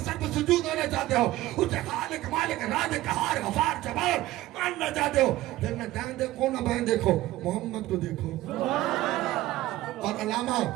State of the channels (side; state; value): left; quieter; 16.2 dB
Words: سر پر سجود ہونا چاہتے ہو، اس کے خالق مالک رازق قہار غفار جبار ماننا چاہتے ہو، پھر نہ دائیں دیکھو نہ بائیں دیکھو، محمد کو دیکھو. اور علامہ